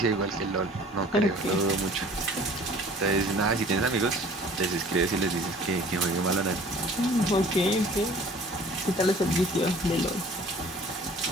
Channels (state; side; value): normal; both; correlation 0.49